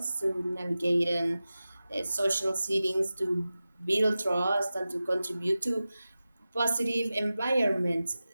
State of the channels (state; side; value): inverted; both; correlation -0.94